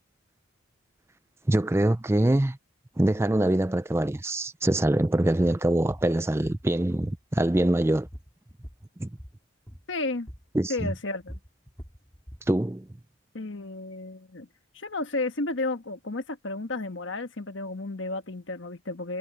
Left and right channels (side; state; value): both; normal; correlation 0.80